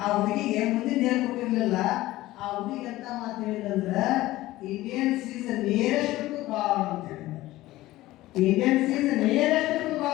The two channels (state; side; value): quieter; right; 17.0 dB